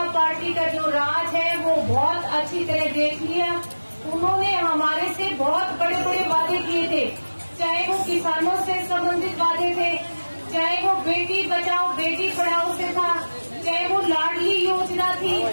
पार्टी का जो राज है वो बहुत अच्छी तरह देख लिया। उन्होंने हमारे से बहुत बड़े बड़े वादे किए थे, चाहे वो किसानों से संबंधित वादे थे, चाहे वो बेटी बचाओ बेटी पढ़ाओ से था, चाहे वो लाडली योजना थी,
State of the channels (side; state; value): both; inverted; correlation -1.00